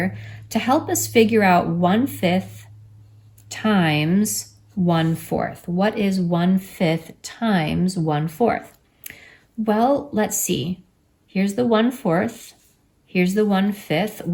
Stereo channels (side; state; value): both; identical; correlation 1.00